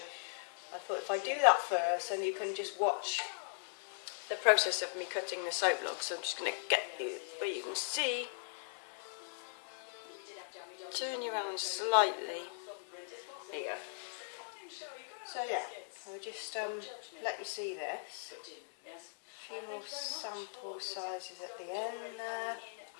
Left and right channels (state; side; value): silent; right; digital silence